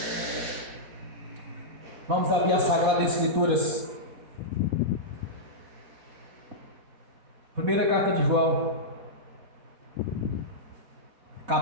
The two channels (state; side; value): late; left; 4.1 ms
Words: Vamos abrir as Sagradas Escrituras. Primeira carta de João,